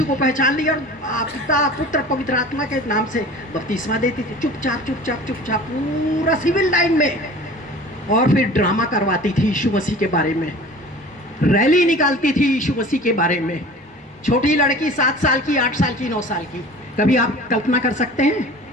को पहचान लिया, और पिता पुत्र पवित्र आत्मा के नाम से बपतिस्मा देती थी, चुपचाप चुपचाप चुपचाप पूरा सिविल लाइन में। और फिर ड्रामा करवाती थी यीशु मसीह के बारे में, रैली निकालती थी यीशु मसीह के बारे में। छोटी लड़की 7 साल की, 8 साल की, 9 साल की, कभी आप कल्पना कर सकते हैं?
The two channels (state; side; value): normal; both; correlation 0.42